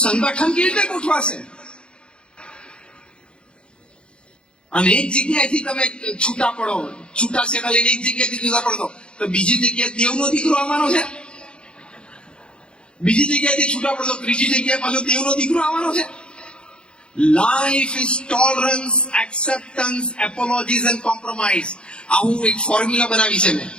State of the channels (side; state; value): right; late; 0.054 ms